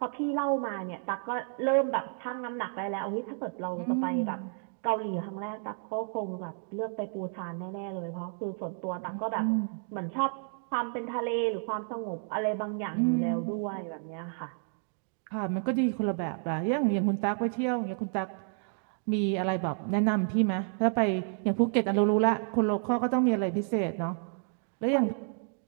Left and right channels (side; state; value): left; silent; 57 dB below the other